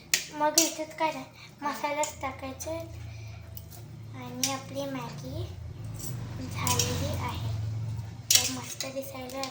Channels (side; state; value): both; identical; correlation 1.00